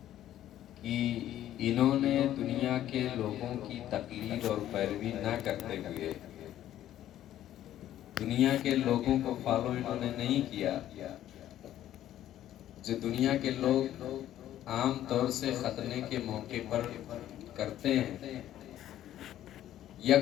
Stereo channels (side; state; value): right; quieter; 12.4 dB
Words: کہ انہوں نے دنیا کے لوگوں کی تقلید اور پیروی نہ کرتے ہوئے، دنیا کے لوگوں کو فالو انہوں نے نہیں کیا جو دنیا کے لوگ عام طور سے ختنے کے موقع پر کرتے ہیں، یا